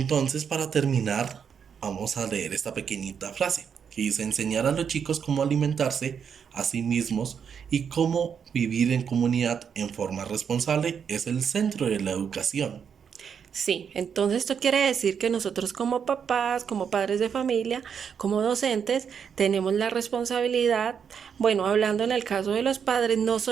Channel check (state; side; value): quieter; left; 7.2 dB